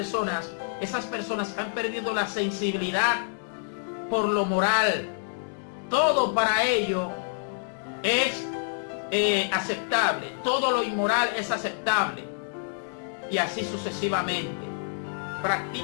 han perdido la sensibilidad por lo moral. Todo para ello es aceptable, todo lo inmoral es aceptable, y así sucesivamente.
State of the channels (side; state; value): right; silent; digital silence